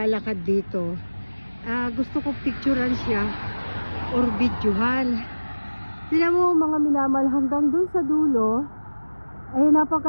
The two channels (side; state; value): both; inverted; correlation -1.00